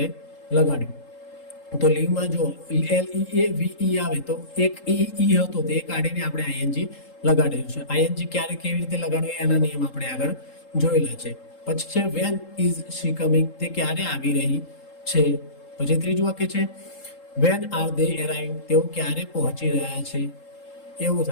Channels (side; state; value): right; late; 3.8 ms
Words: લગાડ્યું. તો લીવમાં જો LEAVE આવે તો એક ઈ હતો તે કાઢીને આપણે ING લગાડેલું છે. ING ક્યારે કેવી રીતે લગાડવું એના નિયમ આપણે આગળ જોયેલા છે. પછી છે વેન ઇઝ શી કમિંગ, તે ક્યારે આવી રહી છે. પછી ત્રીજું વાક્ય છે વેન આર ધે એરાઇવિંગ, તેઓ ક્યારે પહોંચી રહ્યા છે એવું